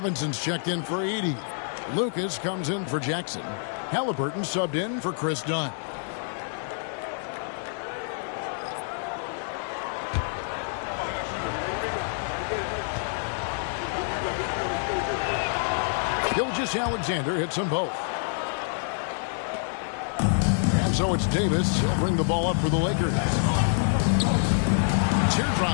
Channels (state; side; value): silent; right; digital silence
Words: checked in for Edey. Lucas comes in for Jackson. Halliburton subbed in for Chris Dunn. Gilgeous-Alexander hits them both. And so it's Davis. He'll bring the ball up for the Lakers.